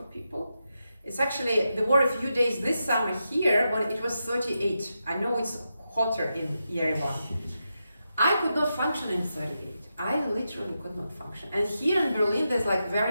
people. It's actually, there were a few days this summer here when it was 38. I know it's hotter in Yerevan. I could not function in 38. I literally could not function. And here in Berlin, there's like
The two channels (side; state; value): both; inverted; correlation -0.87